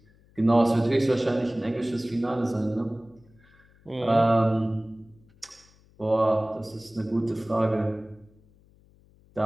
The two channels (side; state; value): left; noise; hum, 30 dB below the sound